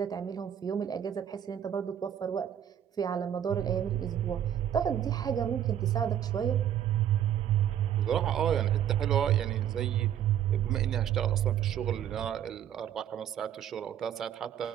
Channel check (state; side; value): quieter; left; 10.1 dB